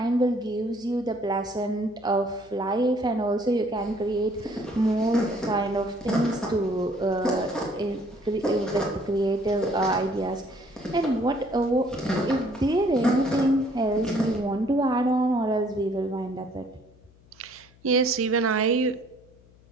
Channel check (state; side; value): noise; left; hum, 27 dB below the sound